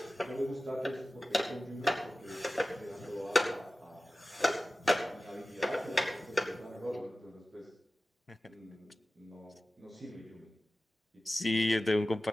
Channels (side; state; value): both; normal; correlation 0.96